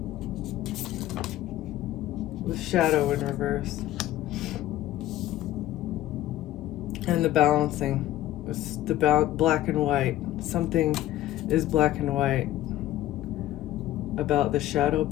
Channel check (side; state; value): right; quieter; 14.1 dB